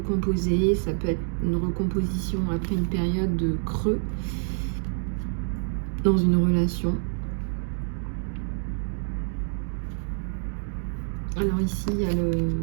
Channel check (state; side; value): silent; left; 60 dB below the other